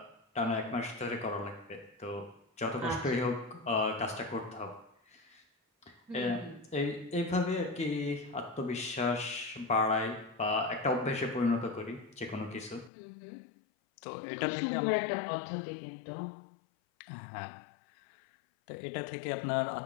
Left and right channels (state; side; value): drops out; right; at 12.9 s